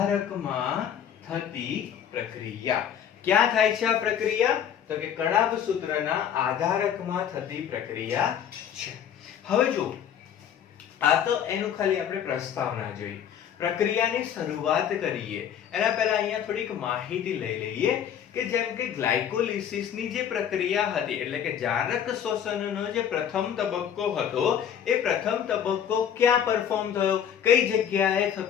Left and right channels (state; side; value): quieter; right; 9.0 dB